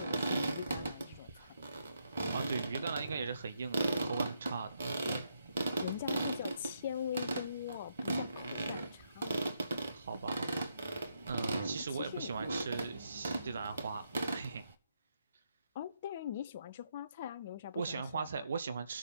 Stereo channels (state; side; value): inverted; both; correlation -0.79